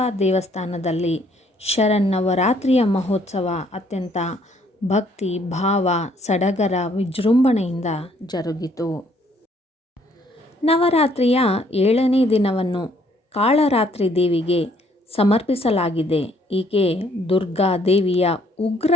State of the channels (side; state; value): both; normal; correlation 0.65